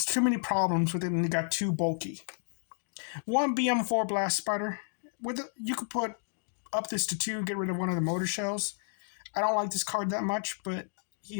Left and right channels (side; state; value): right; silent; digital silence